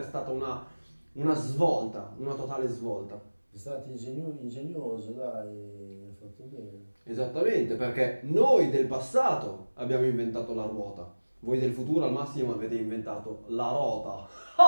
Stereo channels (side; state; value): both; inverted; correlation -1.00